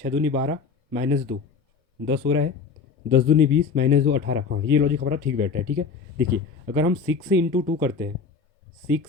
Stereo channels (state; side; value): quieter; right; 5.3 dB